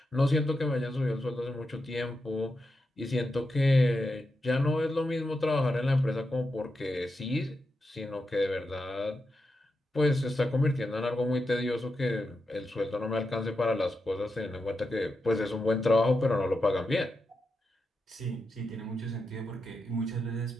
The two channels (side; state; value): both; normal; correlation 0.87